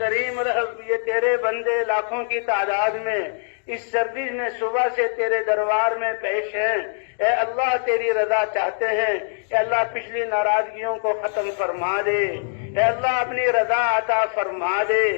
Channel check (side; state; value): right; silent; digital silence